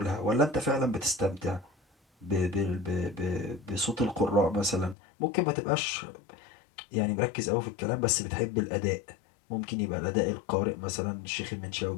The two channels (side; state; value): right; drops out; at 5.0 s